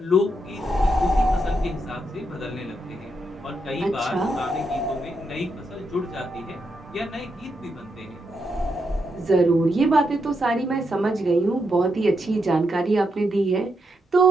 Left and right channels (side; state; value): both; normal; correlation 0.82